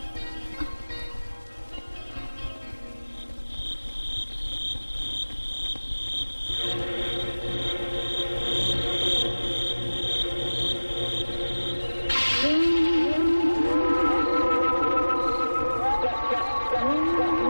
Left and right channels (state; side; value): inverted; both; correlation -1.00